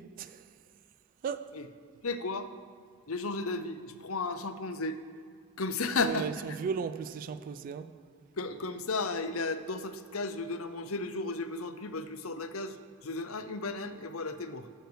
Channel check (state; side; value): normal; both; correlation -0.05